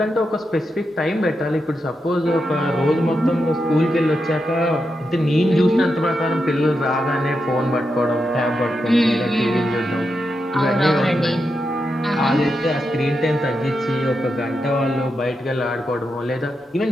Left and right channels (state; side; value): normal; both; correlation 0.86